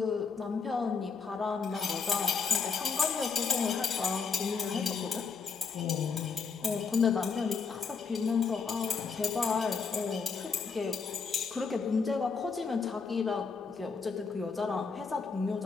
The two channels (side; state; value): right; quieter; 5.3 dB